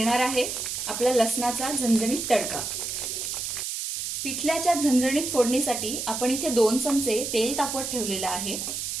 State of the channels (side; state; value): right; noise; hiss, 4 dB below the sound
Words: आहे आपला लसणाचा झणझणीत तडका। पिठल्याच्या झणझणीत फोडणीसाठी आपण इथे 2 चमचे तेल तापवत ठेवलेलं आहे